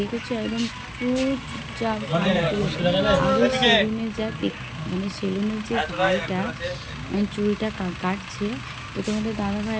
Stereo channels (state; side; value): identical; both; correlation 1.00